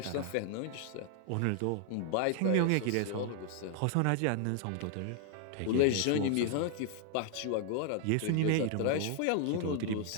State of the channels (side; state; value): both; different; correlation 0.00